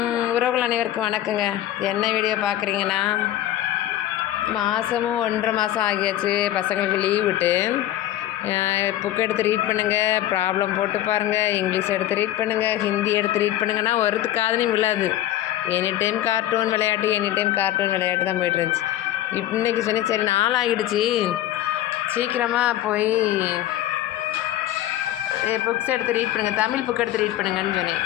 அனைவருக்கும் வணக்கங்க. என்ன வீடியோ பார்க்குறீங்கன்னா, மாதமும் 1.5 மாதம் ஆகியாச்சு பசங்களுக்கு லீவ் விட்டு. புக் எடுத்து ரீட் பண்ணுங்கள், ப்ராப்ளம் போட்டு பாருங்கள், இங்கிலீஷ் எடுத்து ரீட் பண்ணுங்கள், ஹிந்தி எடுத்து ரீட் பண்ணுங்கன்னா ஒருத்து காதுலையும் விழாது. எனி டைம் கார்ட்டூன் விளையாட்டு தான் போய்ட்டு இருந்துச்சு. இன்றைக்கி சொன்னேன், சரி நாளாகிடுச்சு, சீக்கிரமாக போய் புக்ஸ் எடுத்து ரீட் பண்ணுங்கள், தமிழ் புக் எடுத்து ரீட் பண்ணுங்கன்னு சொன்னேன்.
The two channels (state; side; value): quieter; right; 13.4 dB